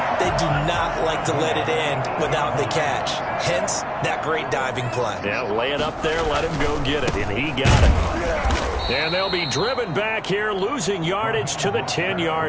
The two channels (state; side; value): identical; both; correlation 1.00